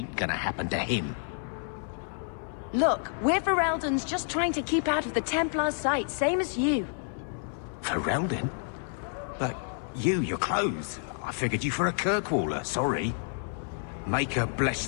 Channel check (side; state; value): right; silent; digital silence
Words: gonna happen to him. Look, we're Fereldans just trying to keep out of the Templars' sight, same as you. Ferelden? But your clothes. I figured you for a Kirkwaller, sorry. Maker bless